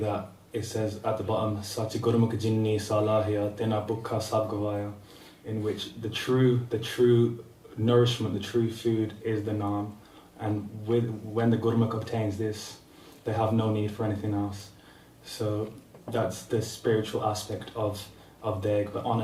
it says at the bottom, Sachi Gurmukh Jinni Salahya Tena Bukha Sabgavaya, in which the true nourishment, the true food is the Naam. And when the Gurmukh obtains this, they have no need for anything else. So that's the spiritual aspect of Deg. But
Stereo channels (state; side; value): identical; both; correlation 1.00